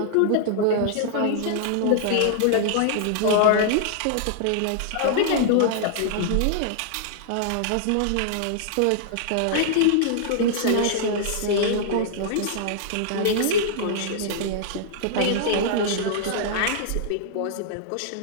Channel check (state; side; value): different; both; correlation -0.01